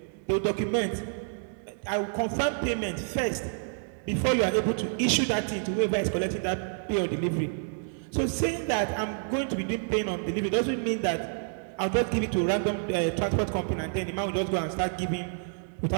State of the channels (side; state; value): left; silent; digital silence